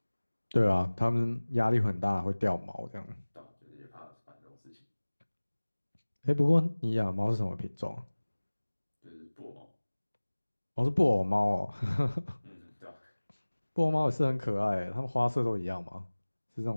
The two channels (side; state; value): both; inverted; correlation -1.00